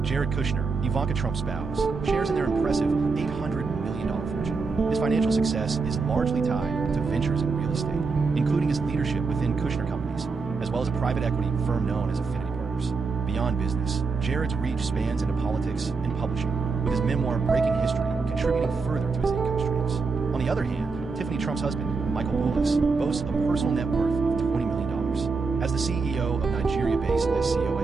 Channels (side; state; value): left; quieter; 4.5 dB